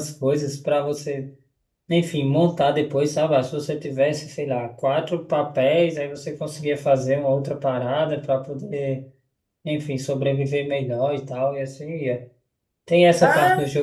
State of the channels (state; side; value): identical; both; correlation 1.00